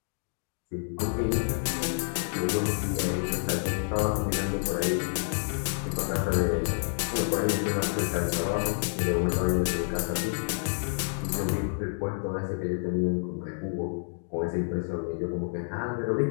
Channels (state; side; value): silent; right; digital silence